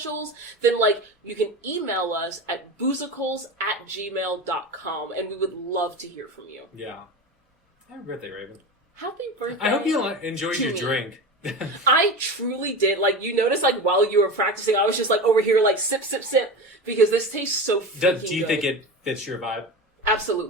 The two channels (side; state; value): both; normal; correlation 0.26